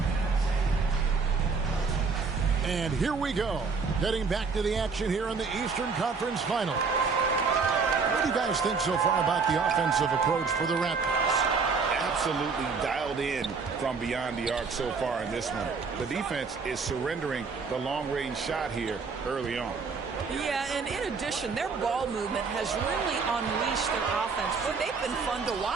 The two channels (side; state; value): left; quieter; 5.0 dB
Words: And here we go, getting back to the action here in the Eastern Conference Final. What do you guys think so far about the offensive approach for the Raptors? Absolutely dialed in from beyond the arc so far in this one. The defense is surrendering the long-range shot here early on. Yeah, and in addition, their ball movement has really unleashed their offense. But they've been fun to